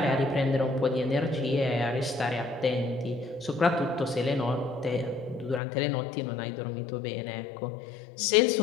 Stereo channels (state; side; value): drops out; right; at 5.6 s